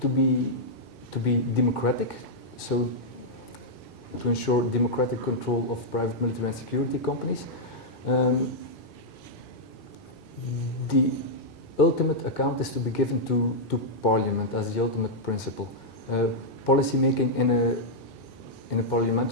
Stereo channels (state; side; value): normal; both; correlation -0.07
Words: be democratic, so to ensure democratic control of private military and security companies, the ultimate account is to be given to Parliament as the ultimate principle. Policymaking in a